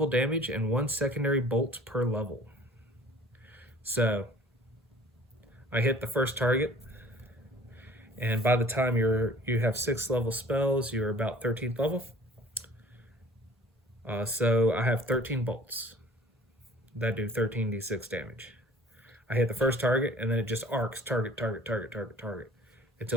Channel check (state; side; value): normal; both; correlation 0.49